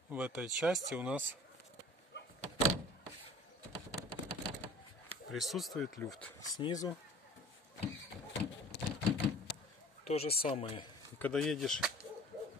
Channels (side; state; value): both; normal; correlation 0.46